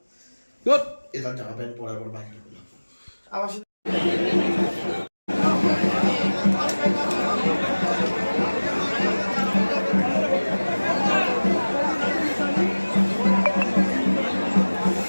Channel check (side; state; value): both; inverted; correlation -1.00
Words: এবার জামা প্যান্ট পরার পর বাইরে আবার